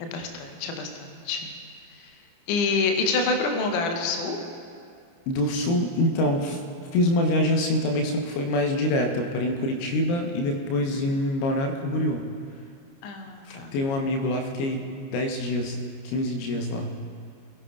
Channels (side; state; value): right; late; 29 ms